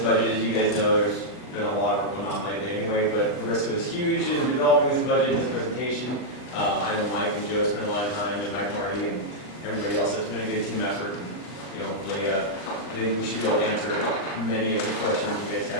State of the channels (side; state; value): right; late; 39 ms